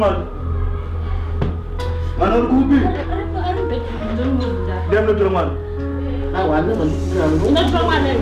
Mana ukubi. Dem no mwana. Ah, wana mwana. Ina mwana.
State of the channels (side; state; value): both; identical; correlation 1.00